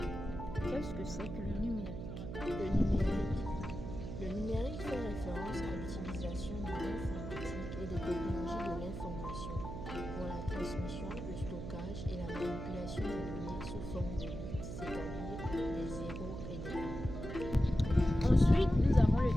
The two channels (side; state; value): right; noise; hum, 7 dB below the sound